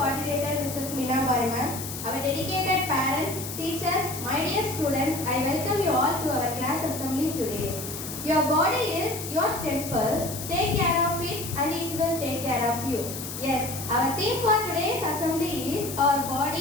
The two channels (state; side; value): noise; left; hiss, 8 dB below the sound